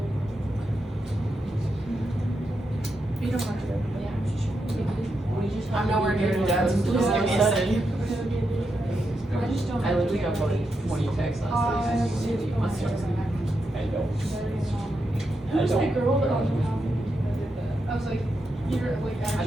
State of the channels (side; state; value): both; normal; correlation 0.85